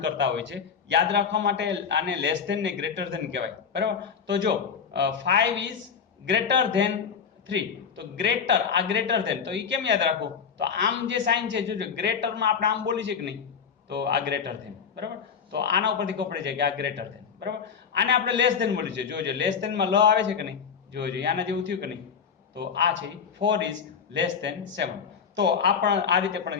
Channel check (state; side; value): quieter; right; 6.7 dB